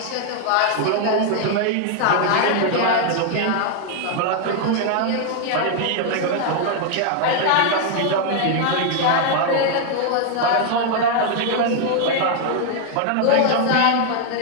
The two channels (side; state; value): both; different; correlation 0.00